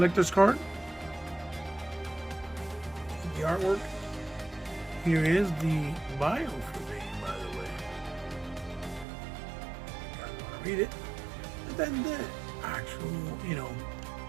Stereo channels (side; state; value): left; drops out; at 9.1 s